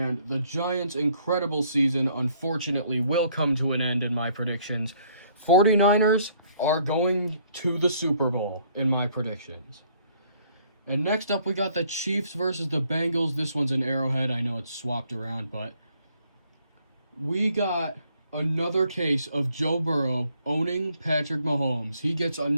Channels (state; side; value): inverted; both; correlation -0.65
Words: the Giants' incredible season, unfortunately, will come to an end in my predictions. 49ers are going to the Super Bowl in my predictions. And next up, we got the Chiefs versus the Bengals. This one's an Arrowhead. I know it's swapped around, but we got another case of Joe Burrow owning Patrick Mahomes. He gets